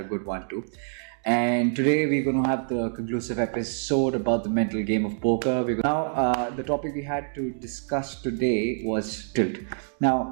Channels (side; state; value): left; silent; digital silence